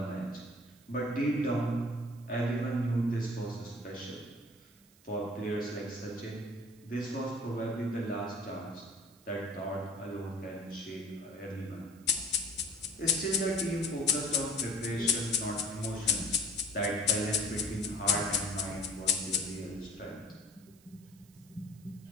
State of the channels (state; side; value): noise; right; hiss, 27 dB below the sound